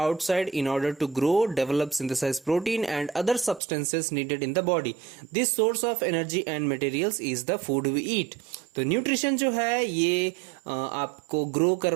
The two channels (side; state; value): left; drops out; at 3.6 s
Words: in order to grow, develop, synthesize protein and other substances needed in the body. This source of energy and materials is the food we eat. तो nutrition जो है ये आपको grow